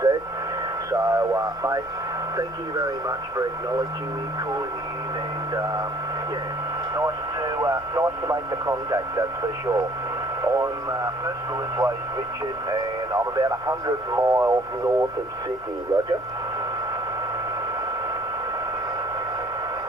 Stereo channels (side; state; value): left; noise; hum, 23 dB below the sound